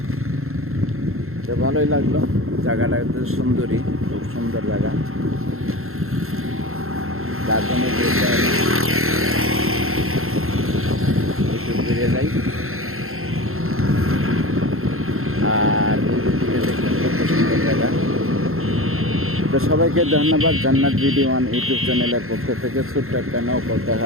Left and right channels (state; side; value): late; left; 0.62 ms